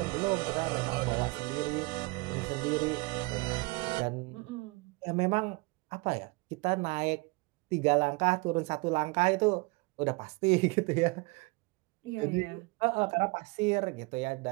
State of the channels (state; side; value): quieter; left; 26.2 dB